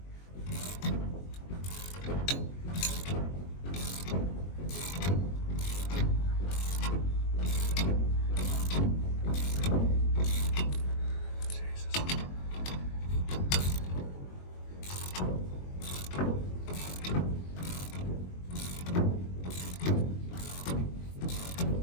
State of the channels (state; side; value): late; right; 22 ms